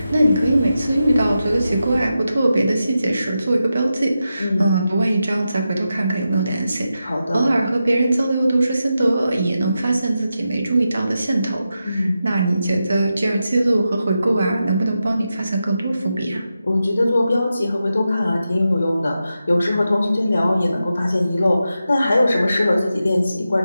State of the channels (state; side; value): inverted; both; correlation -0.90